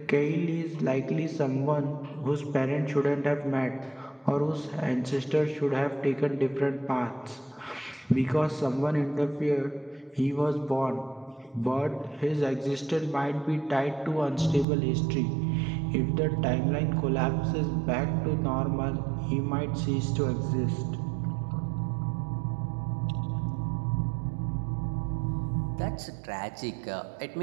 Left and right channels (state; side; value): drops out; left; at 14.7 s